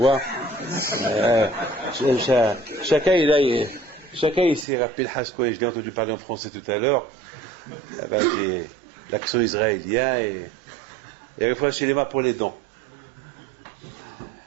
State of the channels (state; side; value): drops out; left; at 4.7 s